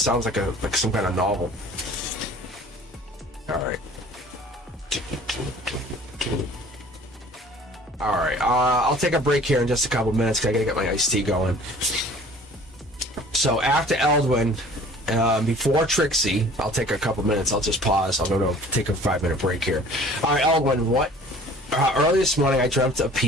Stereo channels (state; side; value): normal; both; correlation 0.49